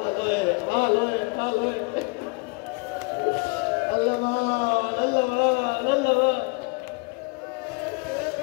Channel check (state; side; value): quieter; right; 31.4 dB